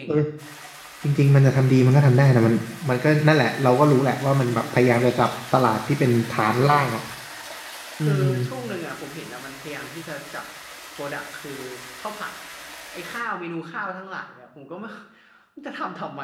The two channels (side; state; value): both; identical; correlation 1.00